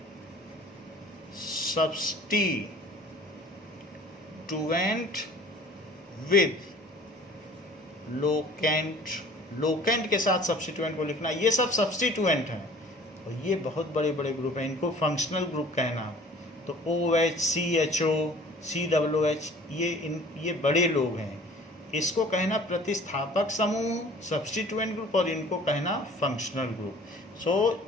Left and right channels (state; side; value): normal; both; correlation 0.49